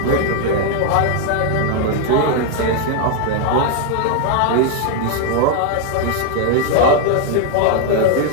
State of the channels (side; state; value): both; different; correlation 0.01